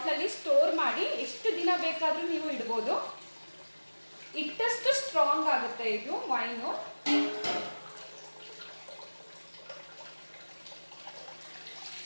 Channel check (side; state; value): both; inverted; correlation -1.00